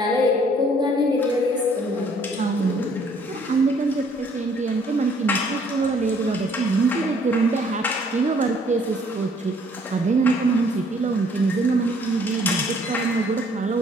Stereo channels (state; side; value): normal; both; correlation 0.62